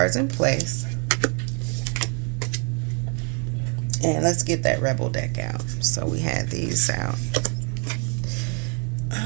in place. And let's get that Rebel deck out. So we had these out.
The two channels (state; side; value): quieter; left; 36.5 dB